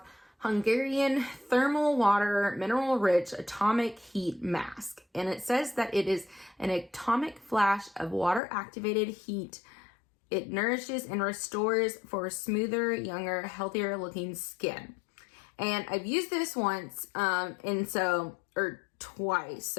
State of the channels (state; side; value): drops out; right; at 8.4 s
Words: Hungarian Thermal Water Mineral Rich Atomic Heat Mask. And it says that it is an atomic flash of water activated heat. It nourishes and restores for smoother, younger, healthier looking skin. And I've used this once, twice